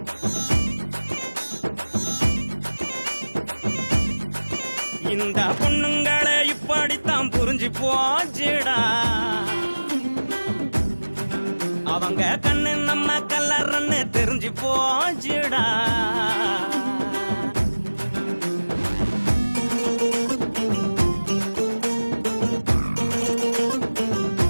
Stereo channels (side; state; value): both; inverted; correlation -1.00